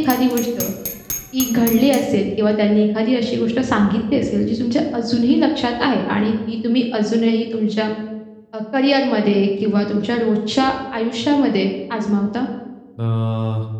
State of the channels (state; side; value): identical; both; correlation 1.00